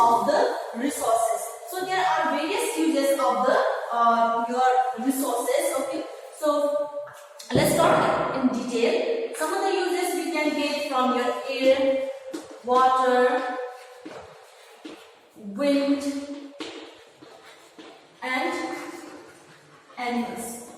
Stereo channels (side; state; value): both; identical; correlation 1.00